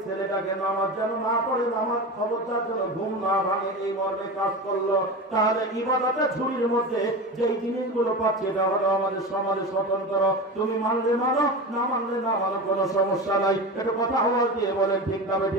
ছেলেটাকে নামাজ যেন না পড়ে, নামাজ খবরদার যেন ঘুম না ভাঙে, এই মর্মে কাজ করলো। তাহলে ইবাদতের ঝুড়ির মধ্যে যেই জিনিসগুলো পাচ্ছে এটা হলো আমাদের সমাজে স্বতন্ত্র। তুমি মানলে মানো, না মানলে না মানো, কোনো সমস্যা নাই। এটা কথা আওয়াজ দিয়ে বলেন, ঠিক না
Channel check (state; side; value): normal; both; correlation 0.26